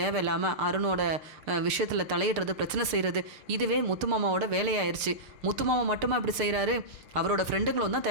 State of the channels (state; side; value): late; left; 6.7 ms